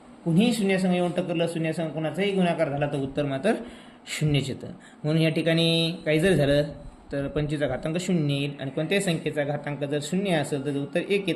कुणीही शून्यासंग येऊन टकरलं, शून्यासंग कोणाचाही गुणाकार झाला तर उत्तर मात्र 0च येतं. म्हणून या ठिकाणी काही जर झालं तर 25चा घातांक 0 येईल आणि कोणत्याही संख्येचा घातांक जर 0 असेल तर उत्तर 1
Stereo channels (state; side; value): identical; both; correlation 1.00